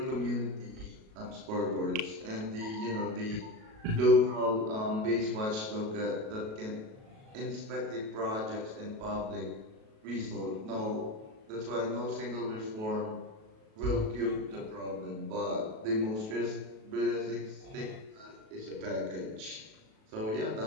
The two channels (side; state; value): left; late; 37 ms